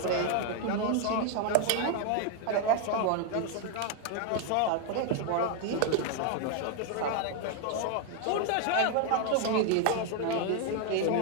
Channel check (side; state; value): both; different; correlation 0.01